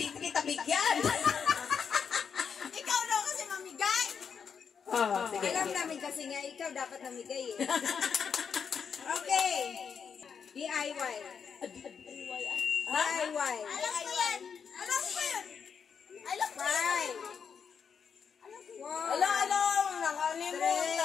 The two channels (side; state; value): right; quieter; 6.6 dB